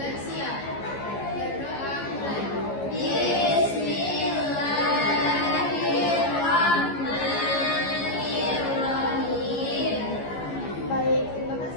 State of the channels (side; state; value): right; late; 15 ms